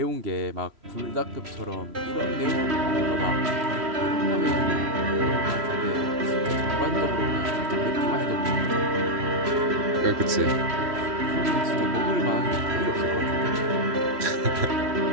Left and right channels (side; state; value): left; late; 3.1 ms